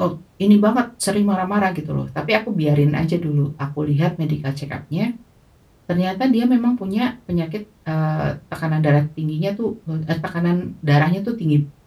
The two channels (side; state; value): both; identical; correlation 1.00